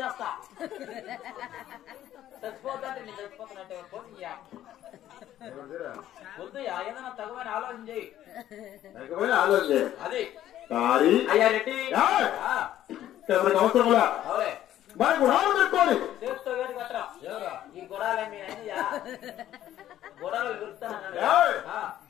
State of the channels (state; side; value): quieter; right; 12.3 dB